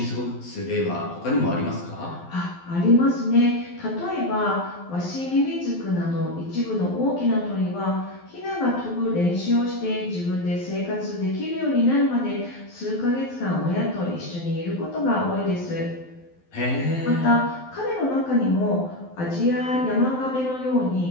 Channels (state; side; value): late; right; 12 ms